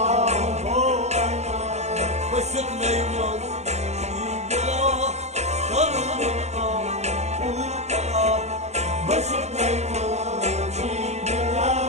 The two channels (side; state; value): left; late; 0.32 ms